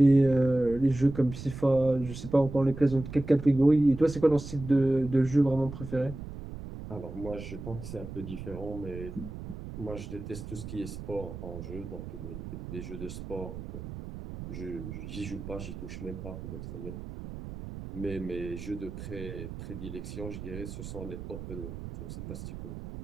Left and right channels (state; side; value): noise; right; rumble, 10 dB below the sound